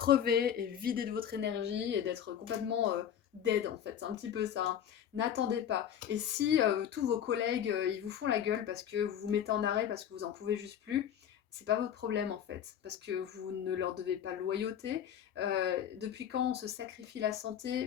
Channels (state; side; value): quieter; right; 9.4 dB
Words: et vidé de votre énergie et d'être complètement dead en fait. C'est un petit peu ça, hein. N'attendez pas. Et si tous vos collègues, ils vous font la gueule parce que vous vous mettez en arrêt, parce que vous n'en pouvez juste plus, c'est pas votre problème en fait, parce que vous ne leur devez pas loyauté. Depuis quand on se sacrifie la